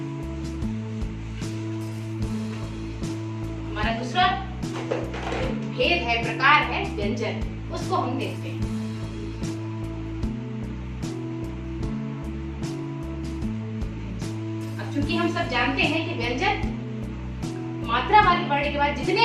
हमारा दूसरा भेद है, प्रकार है व्यंजन, उसको हम देखते हैं। अब चूंकि हम सब जानते हैं कि व्यंजन मात्रा वाले वर्ण के बाद जितने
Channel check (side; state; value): both; identical; correlation 1.00